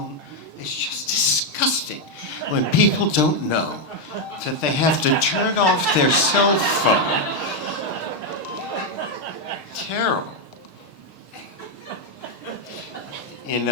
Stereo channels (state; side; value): late; right; 6.5 ms